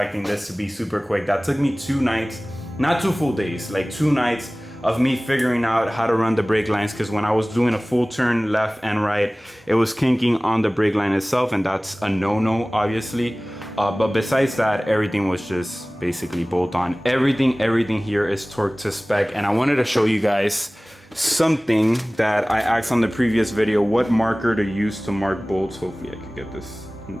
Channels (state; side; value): normal; both; correlation 0.98